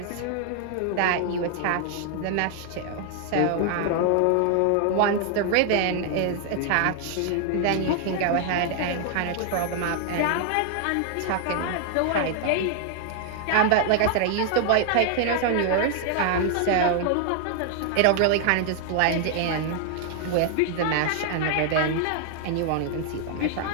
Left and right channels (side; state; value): both; different; correlation 0.00